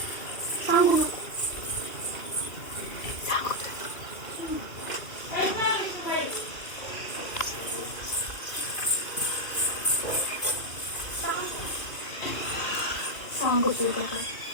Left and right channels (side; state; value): right; late; 2.4 ms